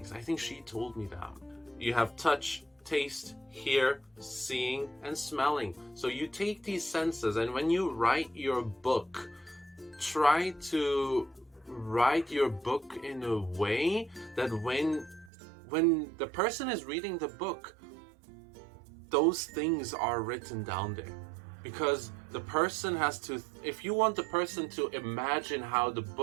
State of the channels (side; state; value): left; drops out; at 15.3 s